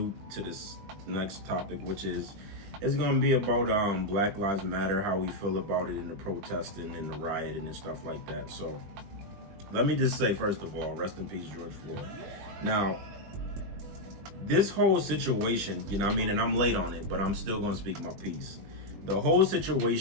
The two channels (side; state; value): left; late; 20 ms